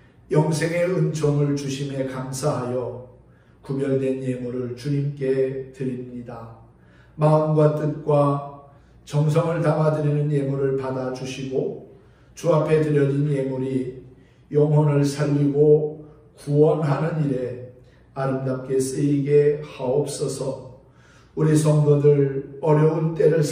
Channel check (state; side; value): identical; both; correlation 1.00